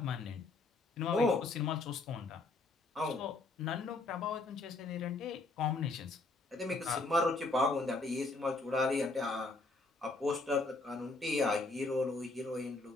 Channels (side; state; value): right; quieter; 3.4 dB